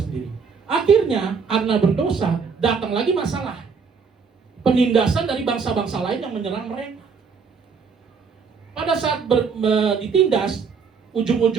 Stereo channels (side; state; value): left; quieter; 5.6 dB